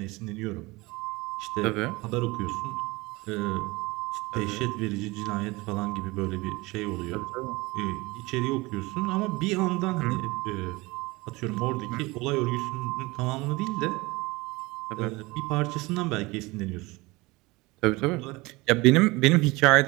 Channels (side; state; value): left; quieter; 22.8 dB